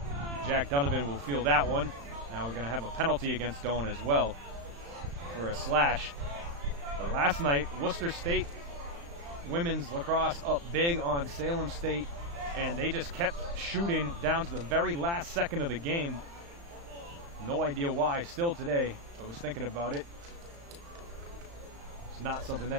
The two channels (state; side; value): late; left; 35 ms